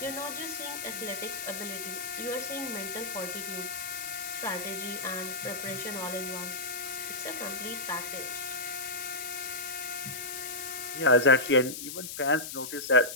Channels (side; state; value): left; noise; hiss, 7 dB below the sound